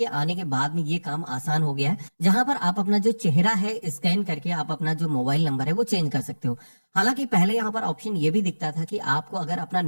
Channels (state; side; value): inverted; both; correlation -1.00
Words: आने के बाद में ये काम आसान हो गया है, जहां पर आप अपना जो चेहरा है स्कैन करके आप अपना जो मोबाइल नंबर है वो चेंज कर सकते हो। हालांकि पहले यहाँ पर ऑप्शन ये भी दिखता था कि आपको अगर अपना